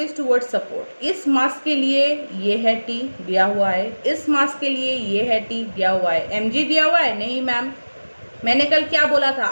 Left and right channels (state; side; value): inverted; both; correlation -1.00